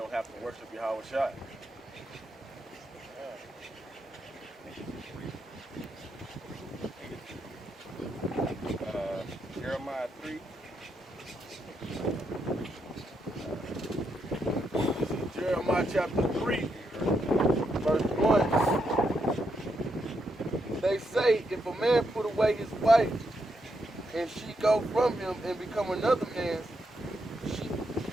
have to worship Yahweh Shai. Jeremiah 3. This is Jeremiah chapter 3, verse 1. They say, if a man put away his wife, and she go from him and become another man's,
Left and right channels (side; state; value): both; normal; correlation 0.80